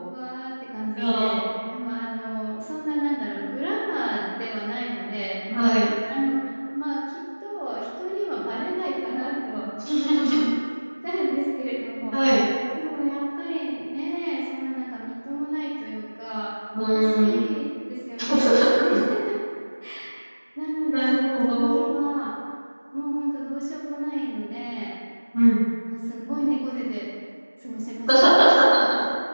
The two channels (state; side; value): inverted; both; correlation -1.00